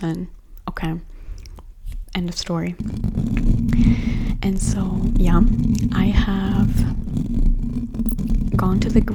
Okay, end of story. And so yeah, I have gone to the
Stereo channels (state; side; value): identical; both; correlation 1.00